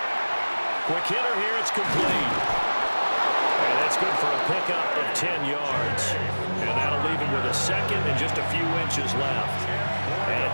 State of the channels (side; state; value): both; inverted; correlation -1.00